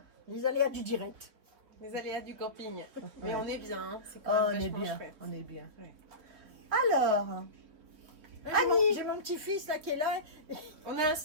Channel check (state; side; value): late; left; 3.7 ms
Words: Les aléas du direct. Les aléas du camping. Mais on est bien, hein. C'est Oh, quand on même est vachement bien. chouette. On est bien. Ouais. Alors, J'ai mon petit-fils là qui est là. On a un